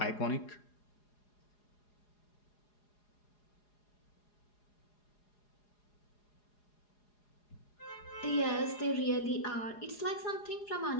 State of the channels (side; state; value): right; late; 4.8 ms